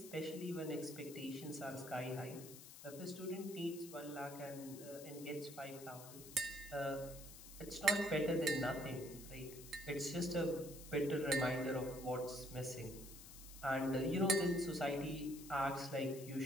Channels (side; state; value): left; noise; hiss, 14 dB below the sound